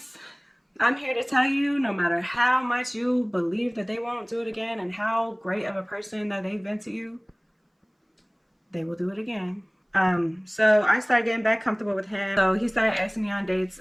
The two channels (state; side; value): identical; both; correlation 1.00